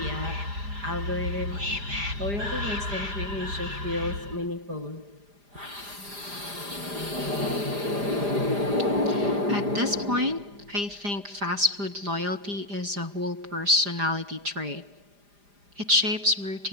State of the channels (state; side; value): late; left; 4.9 ms